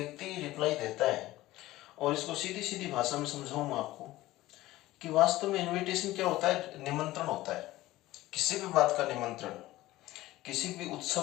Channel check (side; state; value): right; quieter; 16.9 dB